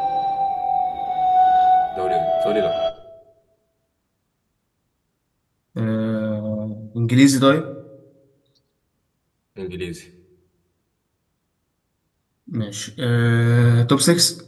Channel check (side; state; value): both; identical; correlation 1.00